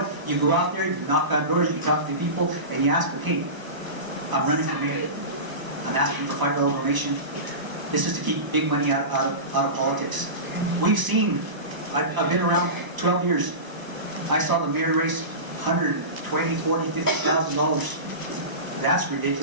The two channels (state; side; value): late; left; 1.0 ms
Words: You go out there, you knock on doors, you talk to people, and you ask them, hey, I'm running for mayor. I'm asking for $5 donation. This is to keep big money out of politics. We've seen, I've been around 12 years. I saw the mayor raise $120,000, $40,000, $50,000. That's